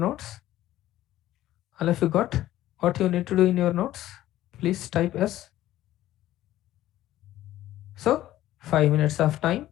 All of you got what you need to do in your notes? Please type S. So 5 minutes of time.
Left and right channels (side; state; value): right; quieter; 14.2 dB